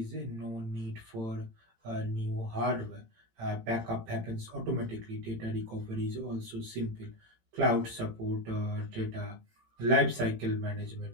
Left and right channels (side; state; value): left; late; 18 ms